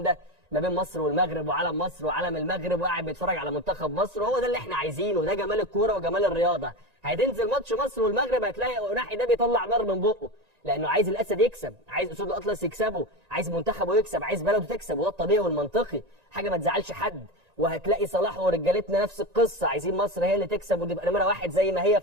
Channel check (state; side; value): late; left; 1.9 ms